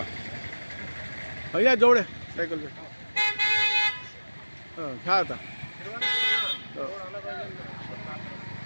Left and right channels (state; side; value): inverted; both; correlation -1.00